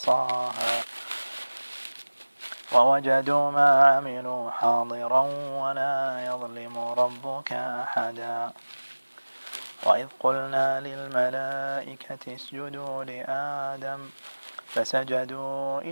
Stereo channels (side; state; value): both; inverted; correlation -1.00